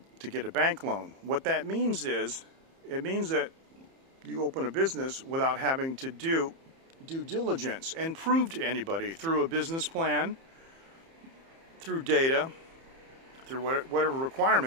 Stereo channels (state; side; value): late; left; 30 ms